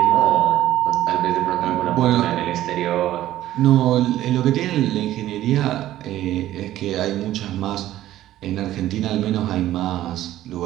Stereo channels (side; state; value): left; quieter; 13.8 dB